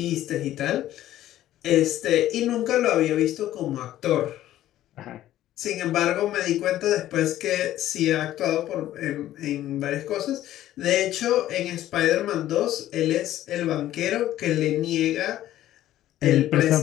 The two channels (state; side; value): quieter; right; 13.4 dB